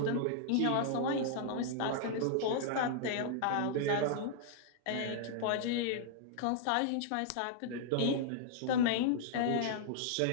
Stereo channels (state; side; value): different; both; correlation -0.01